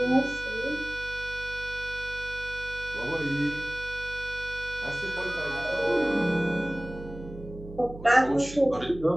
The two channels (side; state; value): right; noise; hum, 13 dB below the sound